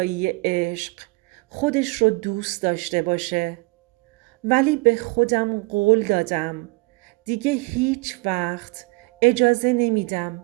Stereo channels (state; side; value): quieter; left; 26.2 dB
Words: عشق خودش رو دوست داشته باشه. ولی به خودم قول دادم دیگه هیچ وقت اجازه نمیدم